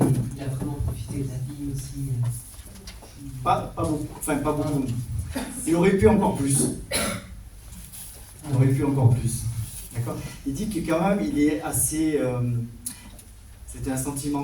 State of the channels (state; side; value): identical; both; correlation 1.00